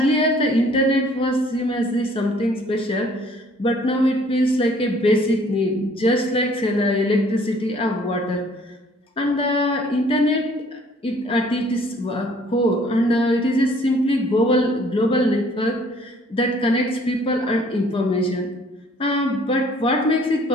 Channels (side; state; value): both; normal; correlation 0.58